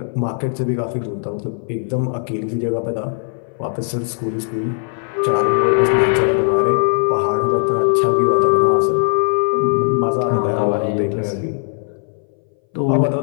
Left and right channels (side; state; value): right; silent; 62 dB below the other